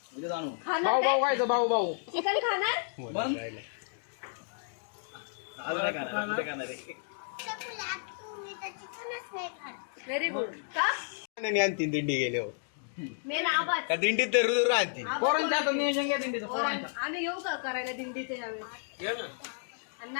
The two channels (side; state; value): right; silent; digital silence